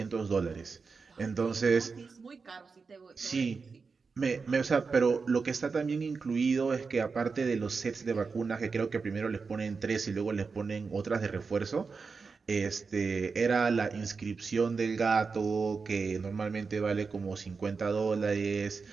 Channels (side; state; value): left; quieter; 4.9 dB